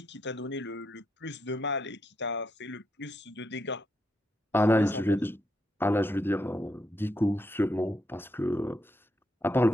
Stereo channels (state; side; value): normal; both; correlation 0.80